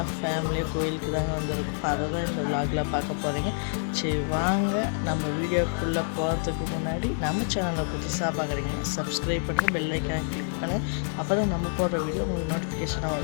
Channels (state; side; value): silent; right; digital silence